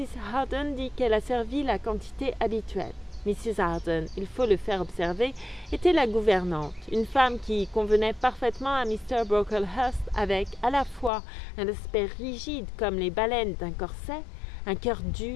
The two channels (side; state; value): right; drops out; at 11.1 s